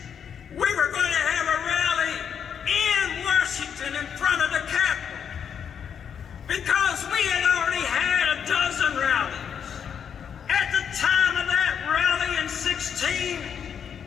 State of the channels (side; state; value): right; quieter; 7.7 dB